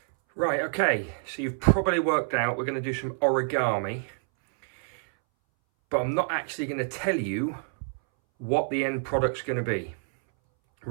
Right, okay, so you've probably worked out we're going to do some origami, but I'm not actually going to tell you what the end product's going to be.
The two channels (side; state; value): left; silent; 60 dB below the other